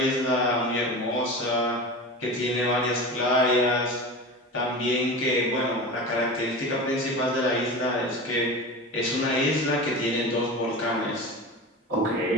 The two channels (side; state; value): both; normal; correlation 0.30